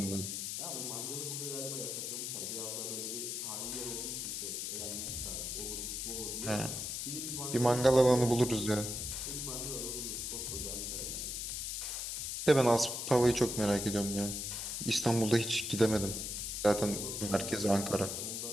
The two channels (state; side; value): noise; left; hiss, 3 dB below the sound